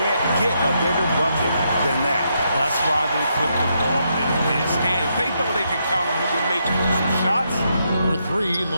get a bigger bucket than that. That's why they put the ball in his hands. They know they can count on him to make some shots. For three,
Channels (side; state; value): both; inverted; correlation -0.79